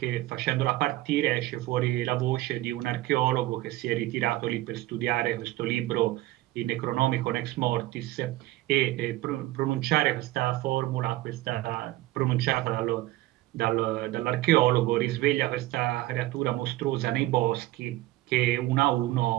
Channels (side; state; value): left; quieter; 17.2 dB